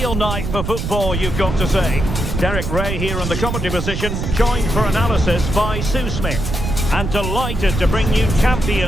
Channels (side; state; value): right; noise; rumble, 3 dB below the sound